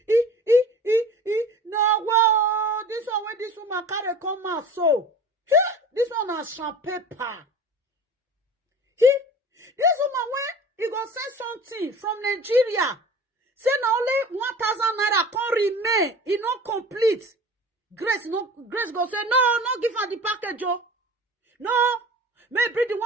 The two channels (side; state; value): both; normal; correlation 0.40